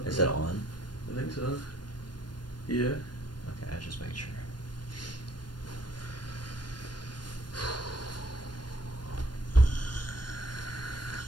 Is it on? I think so. Yeah. Okay, I just make sure.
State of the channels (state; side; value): late; right; 0.71 ms